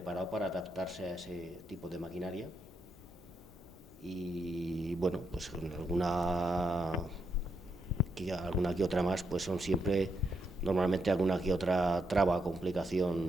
para adaptarse a ese tipo de maquinaria. Y bueno, pues con alguna que otra más, pues son siempre, normalmente alguna que otra traba,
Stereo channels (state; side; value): normal; both; correlation 0.80